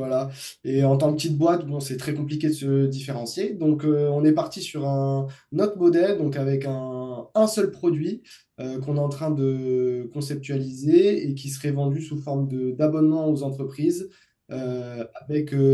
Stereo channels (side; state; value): both; identical; correlation 1.00